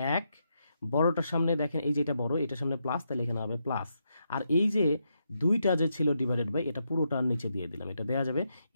1 বড়টার সামনে দেখেন এই যে এটা বড়, এটার সামনে প্লাস, তাহলে এখানে হবে প্লাস। আর এই যে 2টা যে ছিল ডিভাইডেড বাই, এটা পুরোটার নিচে দিয়ে দিলাম, এটা দেওয়া যাবে।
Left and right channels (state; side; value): inverted; both; correlation -0.82